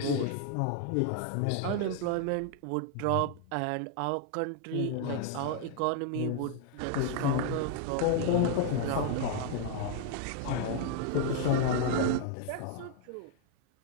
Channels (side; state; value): both; different; correlation 0.00